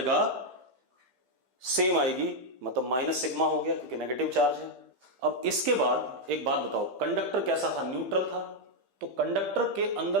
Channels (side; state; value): left; late; 15 ms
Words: सेम आएगी, मतलब माइनस सिग्मा हो गया क्योंकि नेगेटिव चार्ज है। अब इसके बाद एक बात बताओ, कंडक्टर कैसा था? न्यूट्रल था। तो कंडक्टर के